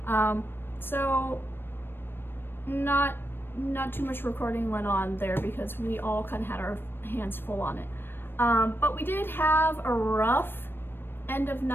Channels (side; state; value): right; late; 0.10 ms